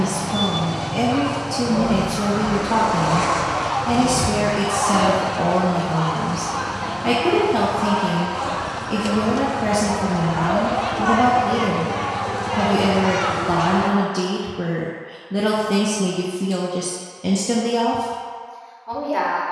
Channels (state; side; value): identical; both; correlation 1.00